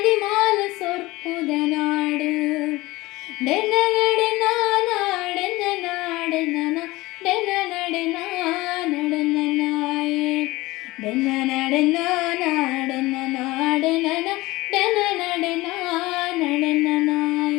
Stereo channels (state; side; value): quieter; right; 20.0 dB